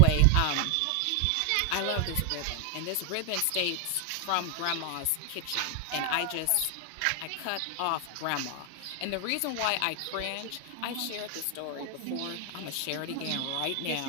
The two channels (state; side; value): different; both; correlation 0.00